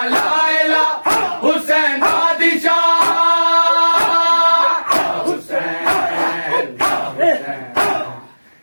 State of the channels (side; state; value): both; inverted; correlation -1.00